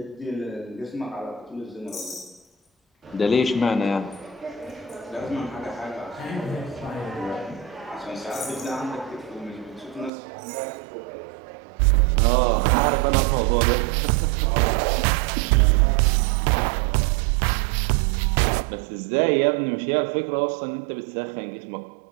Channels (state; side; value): drops out; left; at 10.1 s